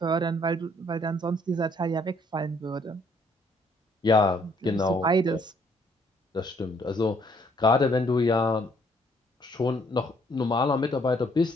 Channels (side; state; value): both; normal; correlation 0.66